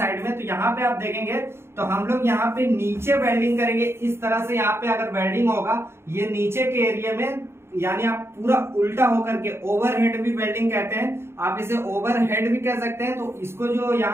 में। तो यहाँ पे आप देखेंगे तो हम लोग यहाँ पे नीचे वेल्डिंग करेंगे इस तरह से। यहाँ पे अगर वेल्डिंग होगा ये नीचे के एरिया में, यानी आप पूरा उल्टा होकर के, ओवरहेड भी वेल्डिंग कहते हैं, आप इसे ओवरहेड भी कह सकते हैं। तो इसको जो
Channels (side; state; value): left; late; 0.12 ms